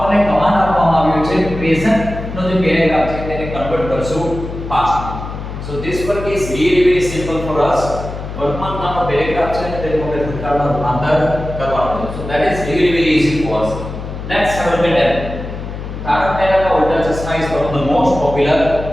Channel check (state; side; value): noise; left; hum, 8 dB below the sound